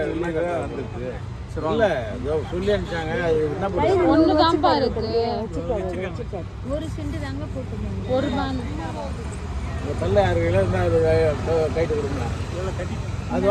இல்ல சொல்லி அனுப்பிச்சாங்க என்ன பண்ணுறது ஒன்று தான்ப்பா இருக்கு ஒரு சென்ட் தாங்க போட்டுருந்தாங்க ஒரு பான் தள்ள 6 கிலோ இருந்தால் கைட்டு கொடுங்க அது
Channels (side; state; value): both; identical; correlation 1.00